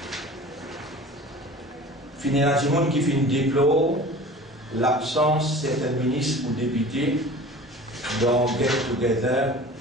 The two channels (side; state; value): both; normal; correlation 0.41